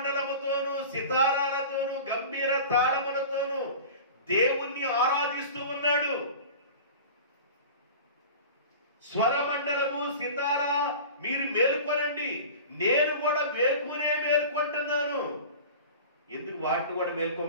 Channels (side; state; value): both; inverted; correlation -0.37